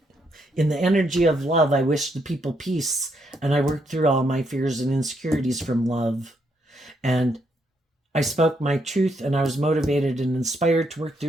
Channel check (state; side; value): normal; both; correlation 0.76